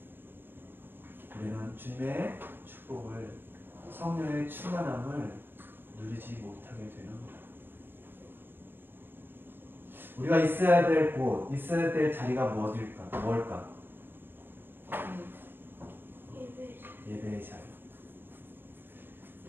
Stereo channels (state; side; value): late; left; 0.098 ms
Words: 우리는 주님의 축복을, 성령의 충만함을 누리지 못하게 되는 거예요. 우리가 있어야 될 곳, 있어야 될 자리가 뭘까? 예배의 자리.